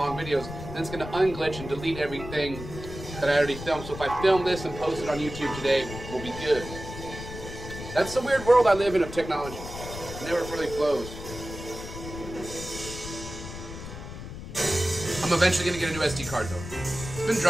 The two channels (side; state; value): left; noise; rumble, 10 dB below the sound